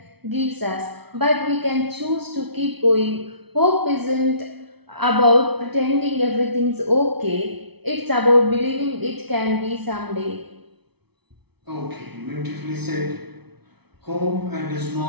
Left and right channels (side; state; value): left; late; 0.98 ms